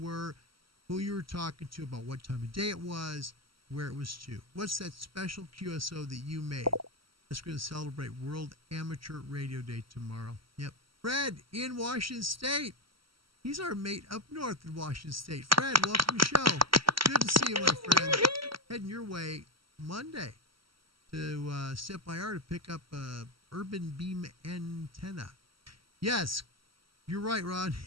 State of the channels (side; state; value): left; late; 0.74 ms